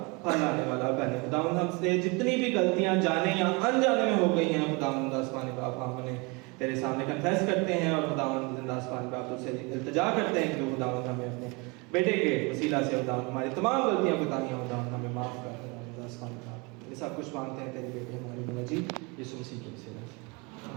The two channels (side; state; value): left; quieter; 28.1 dB